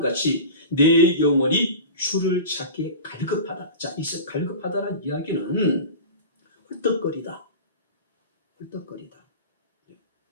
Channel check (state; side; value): inverted; both; correlation -0.32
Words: 내 영혼이 주를 찾기에 갈급하다. 자, 이 갈급하다는 이야기는 헐떡거리다. 헐떡거리다.